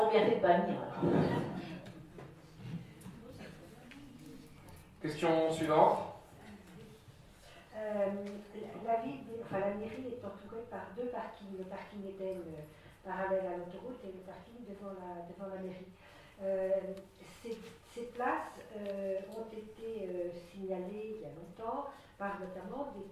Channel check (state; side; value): identical; both; correlation 1.00